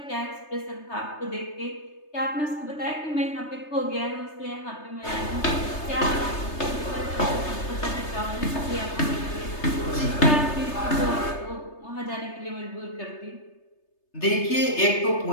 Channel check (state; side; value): late; right; 3.3 ms